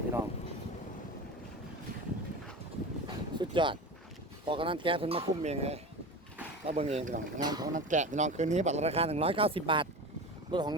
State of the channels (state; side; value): normal; both; correlation 0.29